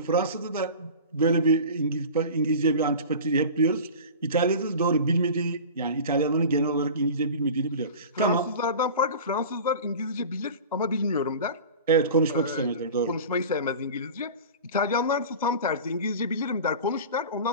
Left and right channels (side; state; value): both; inverted; correlation -0.35